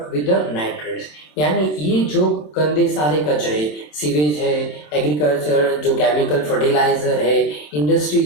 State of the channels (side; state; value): right; late; 27 ms